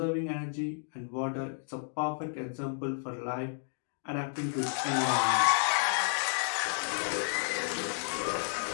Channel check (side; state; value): right; silent; digital silence